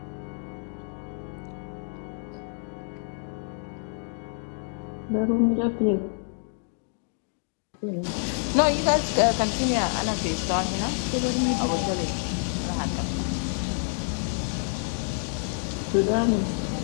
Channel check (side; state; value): right; silent; 56 dB below the other